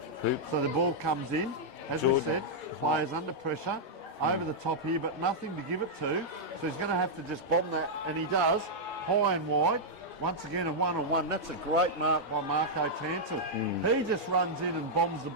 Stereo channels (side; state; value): both; normal; correlation -0.06